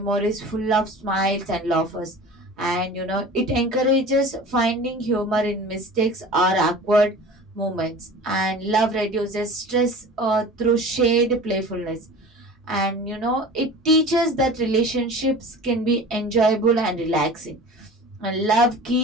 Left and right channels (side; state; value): both; normal; correlation 0.39